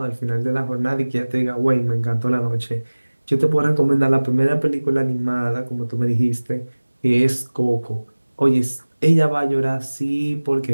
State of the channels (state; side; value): inverted; both; correlation -1.00